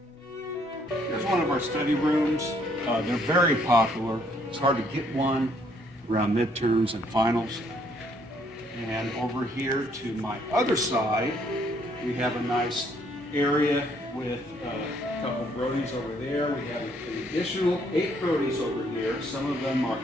Here's one of our study rooms. They're very popular. It's hard to get one around midterms and finals. And over here to my other side, we have a nice area with a couple of Brodies over there. We have an additional 8 Brodies over here. Some of them are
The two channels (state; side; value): normal; both; correlation 0.67